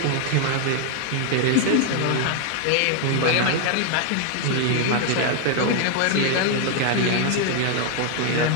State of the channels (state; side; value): different; both; correlation 0.00